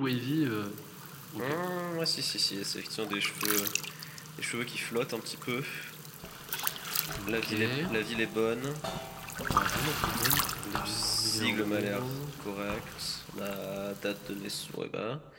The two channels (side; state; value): both; identical; correlation 1.00